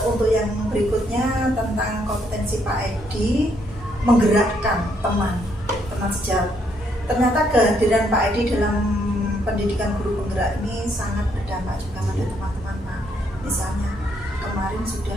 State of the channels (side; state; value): both; normal; correlation 0.72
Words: yang berikutnya tentang kompetensi Pak Edi menggerakkan teman sejawat. Ternyata kehadiran Pak Edi dalam pendidikan guru penggerak ini sangat berdampak juga pada teman-teman Pak. Misalnya kemarin sudah